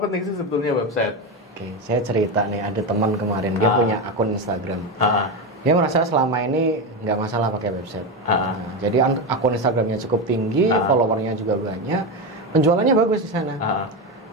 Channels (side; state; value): both; normal; correlation 0.15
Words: sih sebetulnya website? Saya cerita nih, ada teman kemarin dia punya akun Instagram. Dia merasa selama ini nggak masalah pakai website. Jadi akun Instagramnya cukup tinggi, followernya juga banyak, penjualannya bagus di sana.